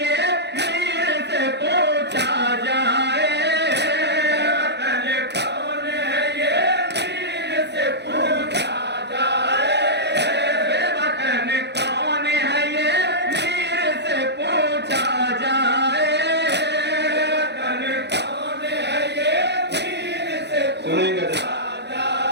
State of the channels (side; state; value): left; late; 0.50 ms